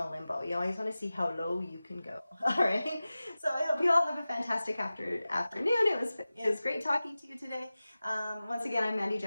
of limbo. You always want to see how low you can go. All right. So I hope you all have a fantastic afternoon. It was great talking to you today. Once again, I'm Mandy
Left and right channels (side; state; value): both; inverted; correlation -0.96